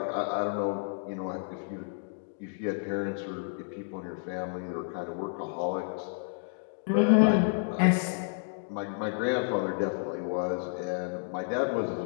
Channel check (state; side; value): silent; right; digital silence